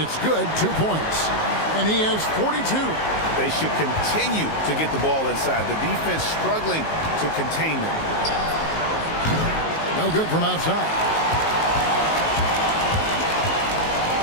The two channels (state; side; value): late; right; 19 ms